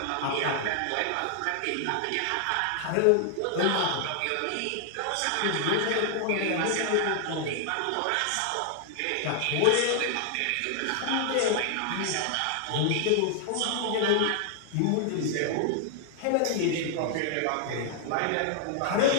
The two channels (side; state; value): both; different; correlation 0.00